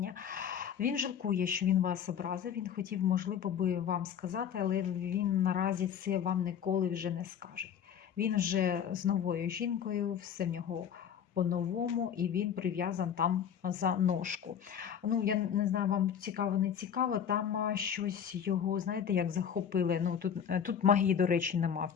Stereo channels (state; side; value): quieter; right; 8.3 dB